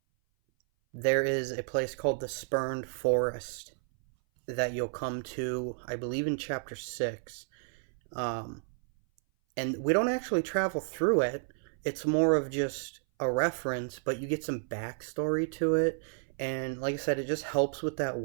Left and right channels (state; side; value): silent; left; 57 dB below the other